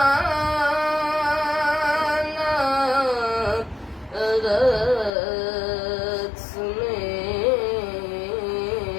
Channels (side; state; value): right; drops out; at 5.1 s